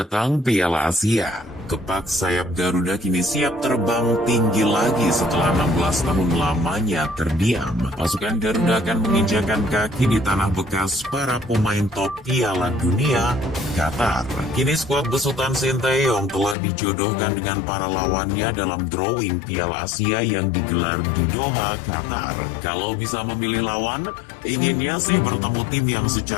Piala Asia. Kepak sayap Garuda kini siap terbang tinggi lagi setelah 16 tahun lamanya terdiam. Pasukan Garuda akan menginjakan kaki di tanah bekas para pemain top Piala Dunia, Qatar. Kini skuad besutan Sinteyong telah dijodohkan dengan para lawannya dalam drawing Piala Asia yang digelar di Doha, Qatar. Kalau bisa memilih lawan, inginnya sih bertemu tim yang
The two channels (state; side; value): drops out; right; at 16.6 s